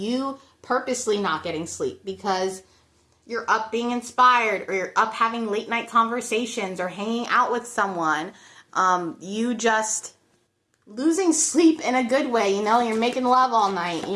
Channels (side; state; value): both; identical; correlation 1.00